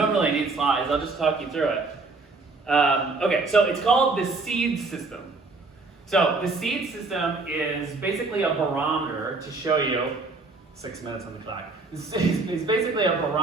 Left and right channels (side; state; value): left; quieter; 3.7 dB